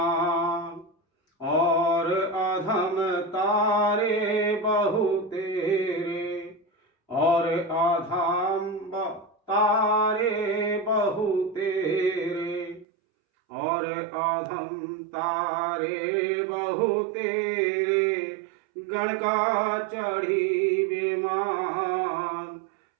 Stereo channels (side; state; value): left; drops out; at 12.9 s